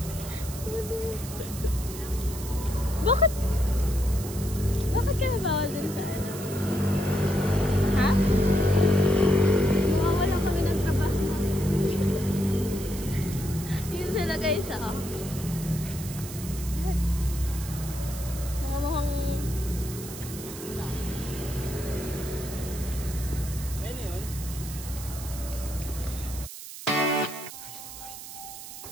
Bakit? Bakit ka nabawal dun sa ano? Ha? Mawawala kami ng trabaho. Yun sila guys, ah. Mga mukhang... Ayun yun.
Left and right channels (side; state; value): right; noise; hiss, 12 dB below the sound